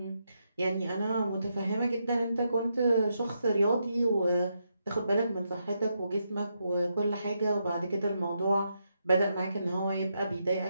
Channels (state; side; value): inverted; both; correlation -0.82